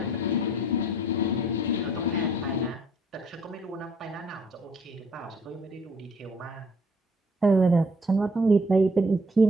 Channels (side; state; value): both; normal; correlation 0.62